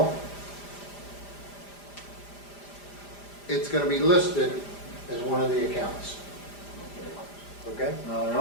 it's going to be listed as one of the accounts. Okay? Now, I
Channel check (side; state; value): right; late; 5.0 ms